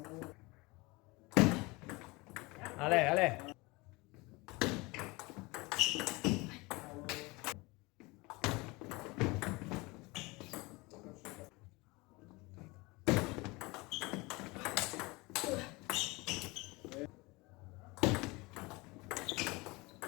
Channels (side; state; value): right; quieter; 24.1 dB